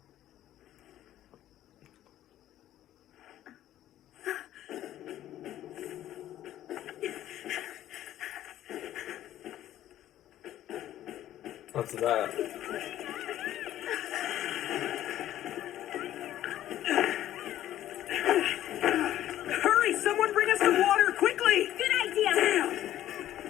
What's that? Hurry! Someone bring us some water, quickly! Good idea.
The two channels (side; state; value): right; quieter; 12.7 dB